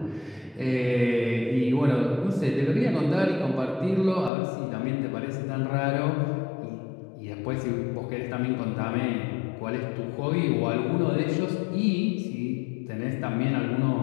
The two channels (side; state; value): right; drops out; at 4.3 s